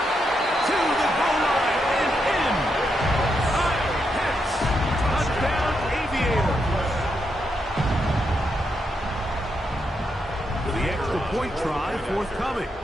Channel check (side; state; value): both; normal; correlation 0.82